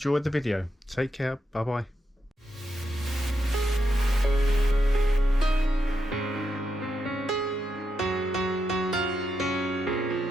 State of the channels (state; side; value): normal; both; correlation 0.83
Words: the video. Take care. Bye bye.